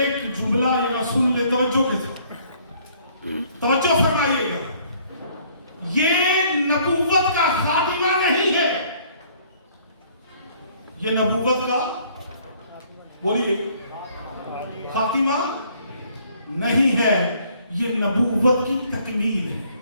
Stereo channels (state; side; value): inverted; both; correlation -0.61